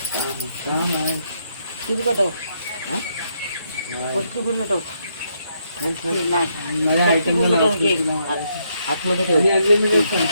काम आहे. किती कटव पटकी पूर्ण टोक मला आयटम आतमध्ये ठेव आणि अनलिमिटेड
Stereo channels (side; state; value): both; inverted; correlation -0.76